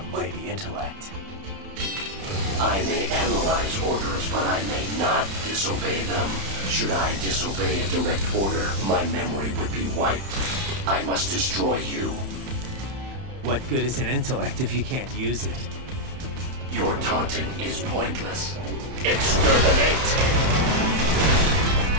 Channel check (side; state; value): left; late; 31 ms